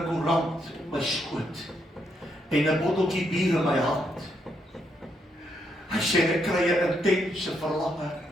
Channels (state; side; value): normal; both; correlation 0.77